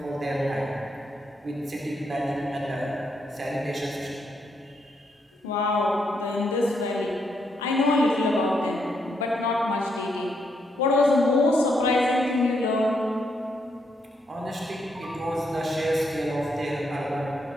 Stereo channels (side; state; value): both; normal; correlation 0.78